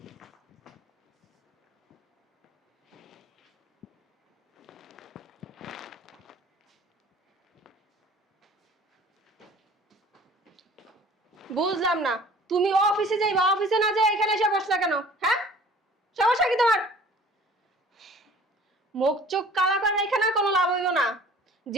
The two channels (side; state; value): both; normal; correlation 0.49